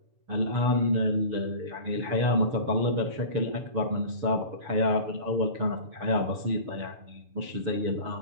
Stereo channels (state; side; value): late; left; 7.0 ms